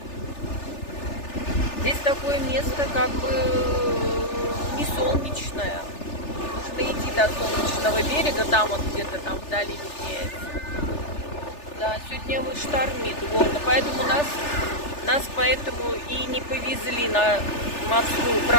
Здесь такое место как бы не солнечное. Нужно идти до солнечного берега, там вот где-то там вдали виднеется. Да, сегодня вот штормит, вот, поэтому нас поэтому и не повезли на морскую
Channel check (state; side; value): late; right; 3.4 ms